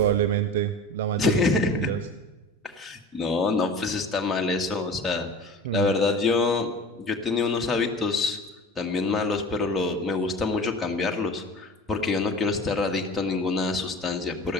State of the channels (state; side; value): normal; both; correlation 0.37